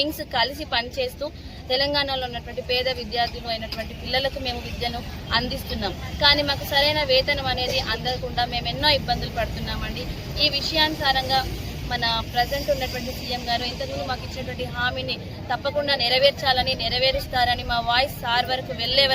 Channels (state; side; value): identical; both; correlation 1.00